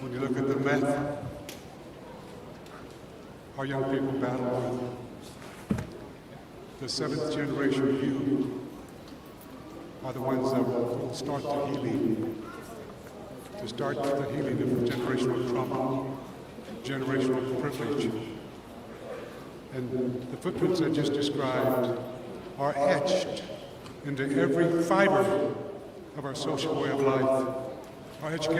When you look at the meth our young people battle with, the seventh generation youth are the ones that will start the healing, to start the healing of generational trauma, generational privilege. And the footprints I just described are etched into every fiber of our social way of life, our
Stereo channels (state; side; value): identical; both; correlation 1.00